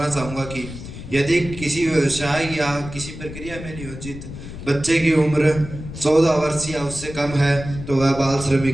चाहूँगा कि यदि किसी व्यवसाय या किसी प्रक्रिया में नियोजित बच्चे की उम्र 14 वर्ष या उससे कम है तो वह बाल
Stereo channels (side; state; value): left; noise; rumble, 11 dB below the sound